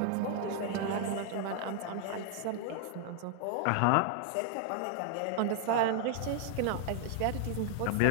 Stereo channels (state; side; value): different; both; correlation 0.00